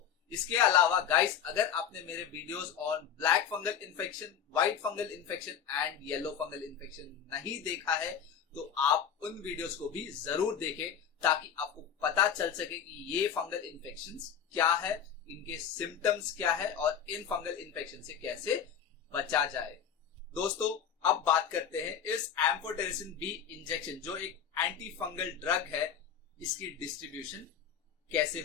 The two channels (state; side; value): quieter; right; 8.2 dB